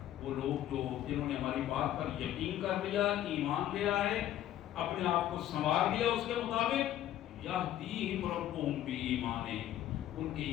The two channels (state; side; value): quieter; right; 12.3 dB